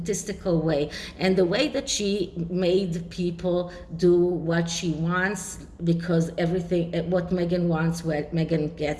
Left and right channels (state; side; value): identical; both; correlation 1.00